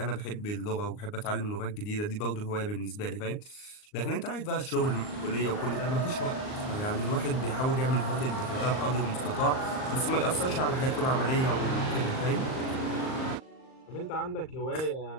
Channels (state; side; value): late; right; 38 ms